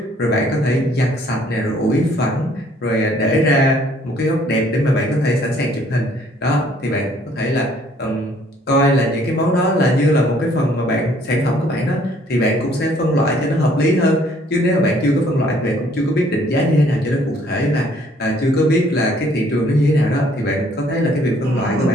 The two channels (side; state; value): both; normal; correlation 0.61